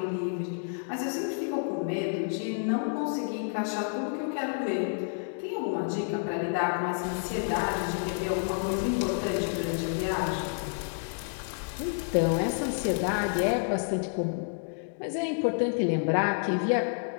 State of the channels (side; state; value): right; silent; digital silence